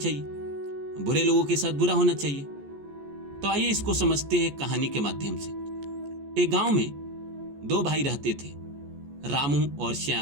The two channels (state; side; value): late; left; 14 ms